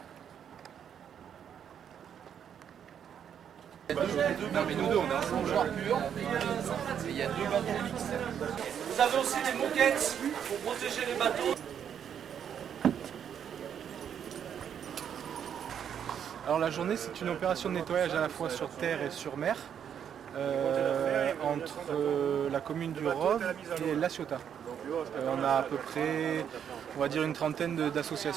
Non mais nous deux on est ensemble. Il y a deux bateaux mixtes. Vous avez aussi des moquettes pour protéger les bateaux. Alors la journée, c'est une opération de nettoyage à la fois sur terre et sur mer, entre la commune du Rove et La Ciotat. On a à peu près, on va dire, une trentaine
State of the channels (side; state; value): left; quieter; 8.5 dB